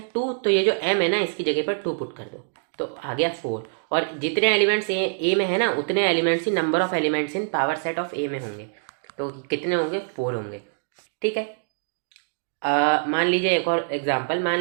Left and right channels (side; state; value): left; silent; digital silence